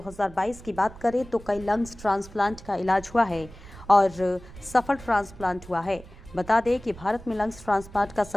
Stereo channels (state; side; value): noise; right; rumble, 18 dB below the sound